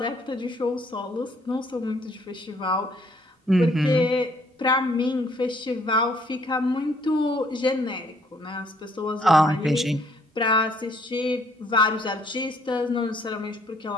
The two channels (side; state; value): both; normal; correlation 0.64